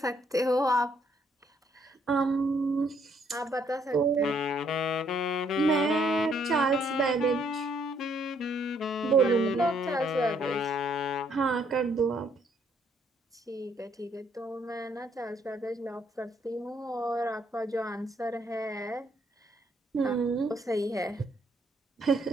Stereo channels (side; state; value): both; normal; correlation 0.69